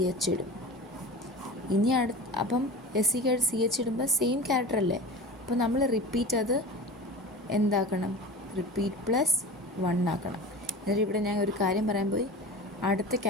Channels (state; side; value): normal; both; correlation 0.33